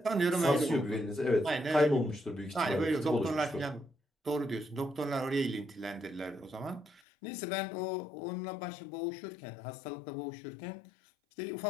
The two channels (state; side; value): drops out; right; at 7.0 s